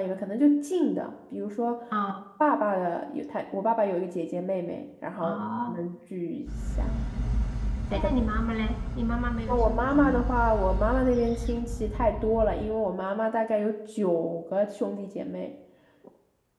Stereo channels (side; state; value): both; identical; correlation 1.00